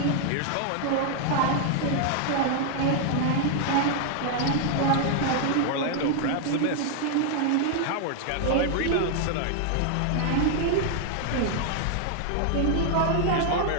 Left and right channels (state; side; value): different; both; correlation 0.00